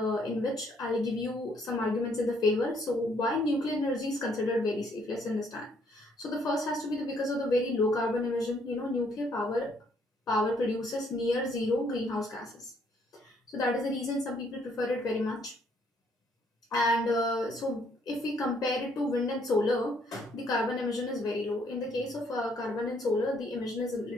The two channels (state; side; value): normal; both; correlation 0.67